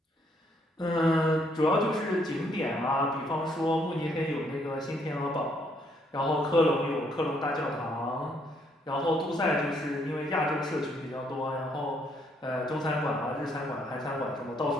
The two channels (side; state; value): both; normal; correlation 0.70